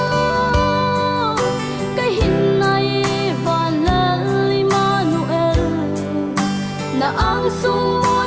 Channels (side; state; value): both; identical; correlation 1.00